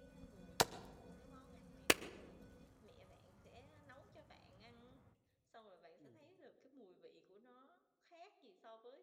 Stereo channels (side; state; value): both; identical; correlation 1.00